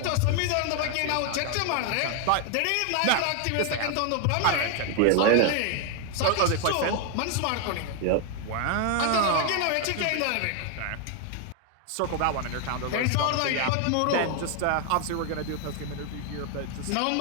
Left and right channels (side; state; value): both; different; correlation 0.01